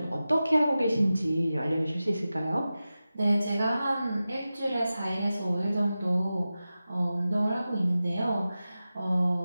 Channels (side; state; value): both; inverted; correlation -0.94